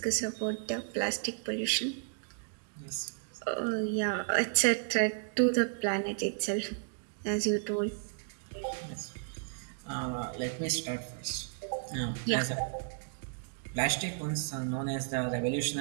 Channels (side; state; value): left; silent; digital silence